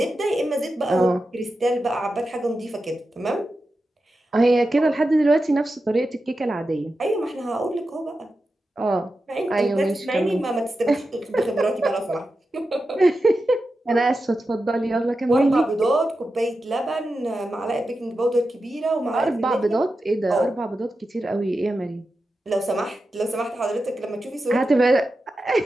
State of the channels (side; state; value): both; normal; correlation 0.91